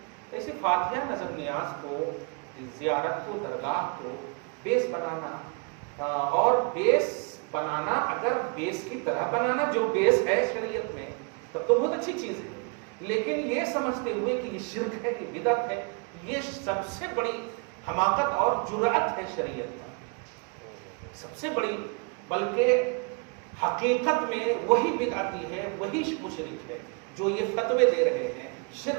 ایسے فاتحہ، نظر نیاز کو، زیارت کو، درگاہ کو بیس بنانا، اور بیس بنانا اگر بیس کی طرح بنانا جو بیس ہے شریعت میں تب تو بہت اچھی چیز ہے، لیکن یہ سمجھتے ہوئے کہ یہ شرک ہے، یہ بدعت ہے، یہ سب سے بڑی حماقت اور جرأت ہے شریعت کا، سب سے بڑی، بلکہ حقیقت میں وہی بدعتی ہے، وہی مشرک ہے جو یہ فتوے دے رہے ہیں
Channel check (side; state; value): left; quieter; 34.1 dB